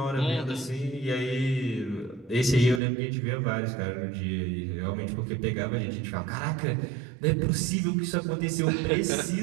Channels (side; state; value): left; drops out; at 2.8 s